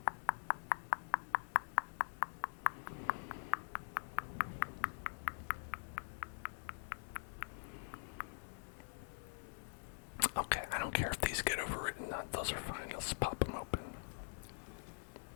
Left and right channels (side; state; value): right; silent; digital silence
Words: Okay, I don't care if these get overwritten. Those are fine. Let's pop them open.